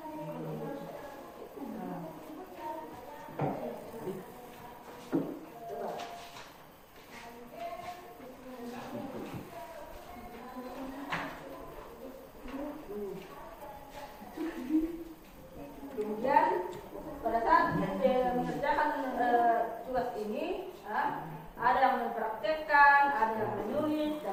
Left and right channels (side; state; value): both; identical; correlation 1.00